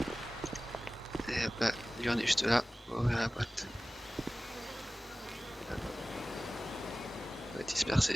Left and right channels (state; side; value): normal; both; correlation 0.97